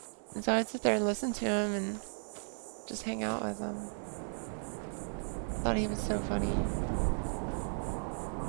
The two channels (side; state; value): left; silent; digital silence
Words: And so I'd sit there and listen to him and just hang out with him. Thought he was so funny.